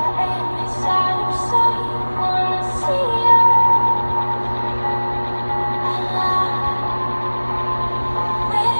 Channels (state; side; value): inverted; both; correlation -1.00